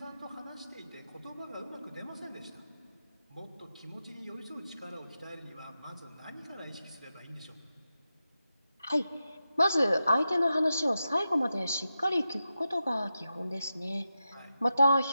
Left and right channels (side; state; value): both; inverted; correlation -0.90